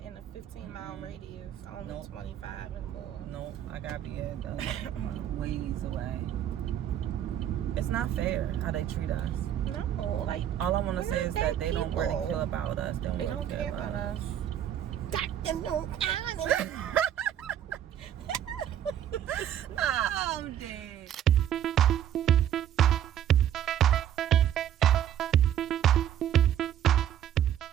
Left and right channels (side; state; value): left; quieter; 10.5 dB